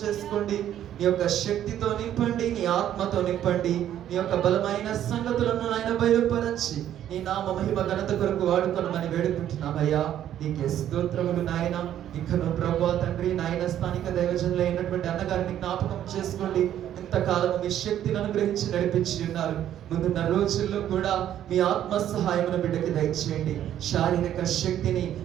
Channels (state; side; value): quieter; left; 11.1 dB